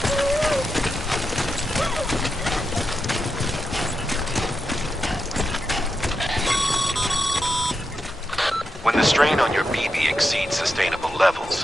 When the strain on your BB exceeds sustainable levels,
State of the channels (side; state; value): both; normal; correlation 0.87